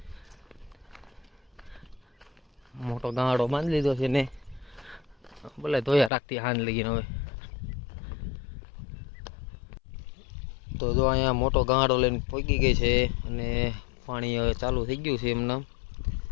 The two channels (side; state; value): right; drops out; at 6.1 s